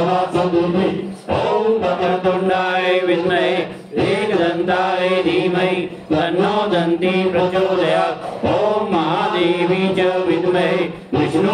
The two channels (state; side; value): identical; both; correlation 1.00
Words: सदुमि ॐ वक्रतुण्डाय विद्महे एकदन्ताय धीमहि तन्नो दन्ती प्रचोदयात् ॐ महादेवी च विद्महे